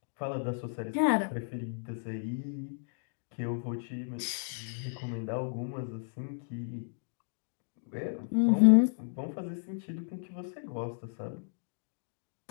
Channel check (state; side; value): silent; right; digital silence